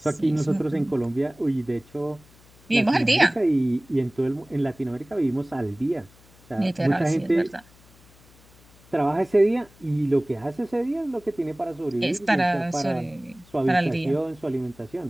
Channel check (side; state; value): left; noise; hum, 27 dB below the sound